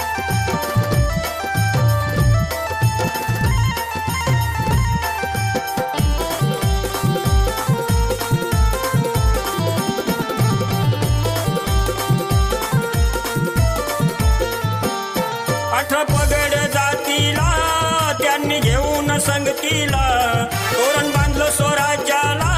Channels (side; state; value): both; identical; correlation 1.00